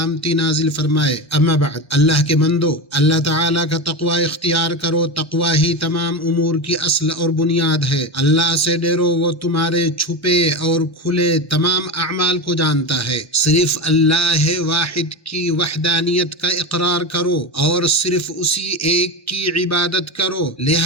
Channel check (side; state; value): right; late; 1.1 ms